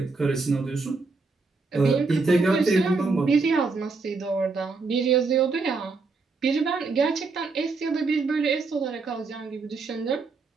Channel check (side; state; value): left; quieter; 4.1 dB